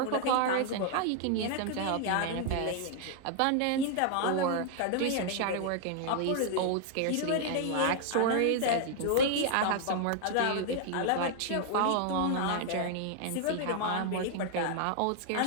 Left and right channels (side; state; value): both; different; correlation 0.00